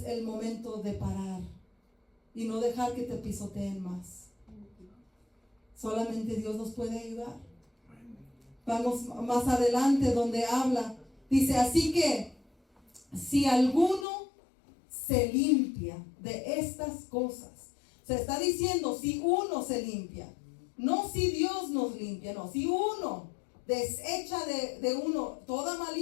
el momento de parar y no dejar que te pisoteen más. Solamente Dios nos puede ayudar. Vamos más adelante donde habla. Dice, así que si alguno se limpia de estas cosas. Se está diciendo si uno se limpia. No si Dios nos limpia, no. Si uno desecha de uno toda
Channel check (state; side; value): drops out; right; at 14.1 s